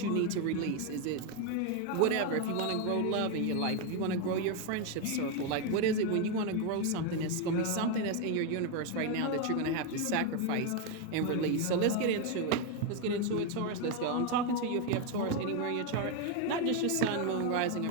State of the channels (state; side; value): different; both; correlation 0.02